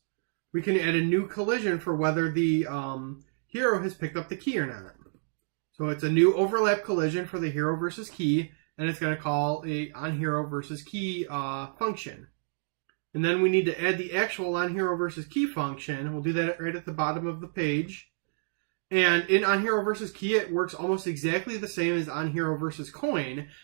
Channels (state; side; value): silent; left; digital silence